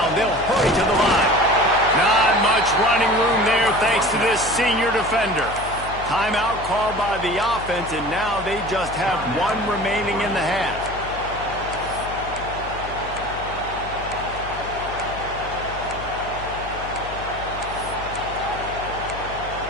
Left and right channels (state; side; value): noise; left; hum, 12 dB below the sound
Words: They'll hurry to the line. Not much running room there thanks to this senior defender. Timeout called by the offense, and now they just have one remaining in the half.